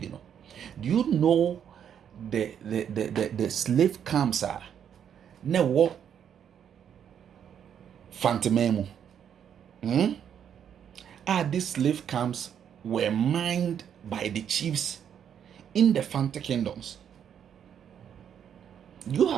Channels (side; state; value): left; quieter; 8.7 dB